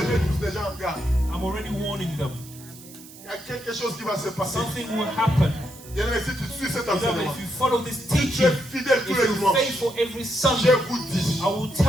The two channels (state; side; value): noise; right; hiss, 19 dB below the sound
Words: mets tous déjà en garde. I'm already warning them. Il y a quelque chose qui va se passer. Something will happen. Bien aimé, si tu suis cet Beloved, enseignement, if you follow this tu es teaching, fidèle tous if les you're dimanches, faithful every je Sunday, vous dis, I will